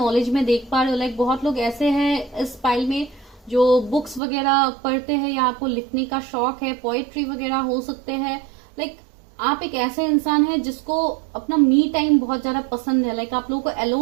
में देख पा रहे हो। बहुत लोग ऐसे हैं इस फाइल में जो बुक्स वगैरह पढ़ते हैं, या आपको लिखने का शौक है, पोएट्री वगैरह हो सकते हैं। आप एक ऐसे इंसान है जिसको अपना मी टाइम बहुत ज्यादा पसंद है। आप लोगों को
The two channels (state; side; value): drops out; left; at 4.2 s